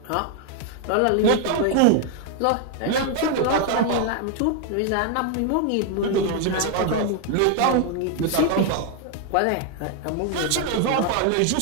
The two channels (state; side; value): different; both; correlation 0.00